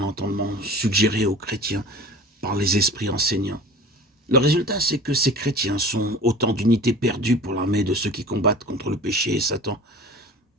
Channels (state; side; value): normal; both; correlation 0.40